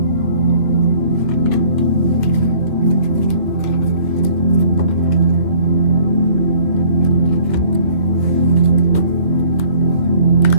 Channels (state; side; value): late; left; 2.7 ms